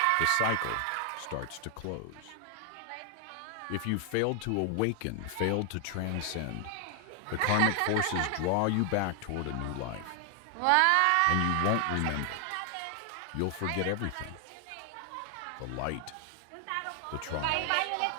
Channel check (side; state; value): both; different; correlation 0.00